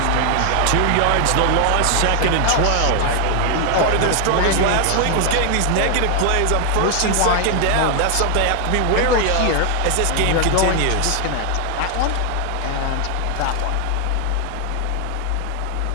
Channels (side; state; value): both; different; correlation 0.00